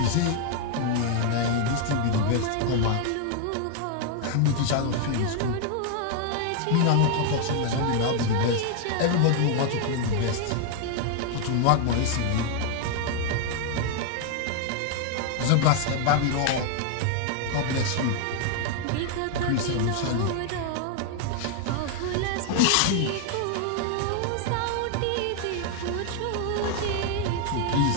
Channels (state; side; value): different; both; correlation 0.00